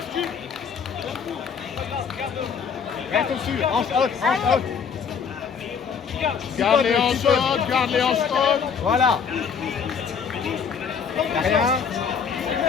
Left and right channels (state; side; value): quieter; right; 6.5 dB